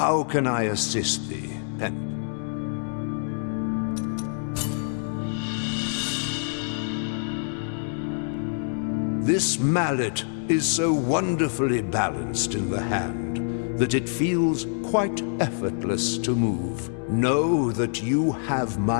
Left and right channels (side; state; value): right; silent; 61 dB below the other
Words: can I assist thee, Pen? This mallet is so wonderfully balanced in the hand that it feels quite effortless to move. Know that you have